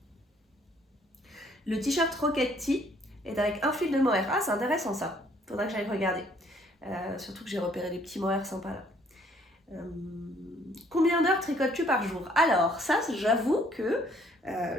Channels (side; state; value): both; normal; correlation 0.62